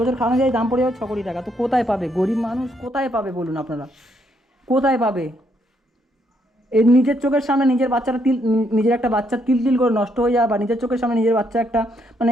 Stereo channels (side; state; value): both; normal; correlation 0.74